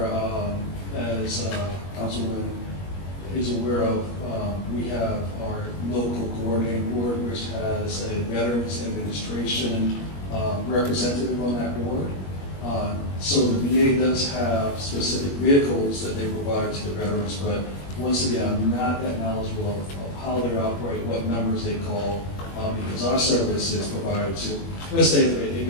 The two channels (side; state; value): right; late; 21 ms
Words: as Councilman is aware of, we have our local coordinating board, which has a Veterans Administration representative on that board. So the VA does have specific vehicles that they provide to the veterans, but once again, I'm not that knowledgeable of how they operate, what numbers they call, because our service is provided to, let's say if a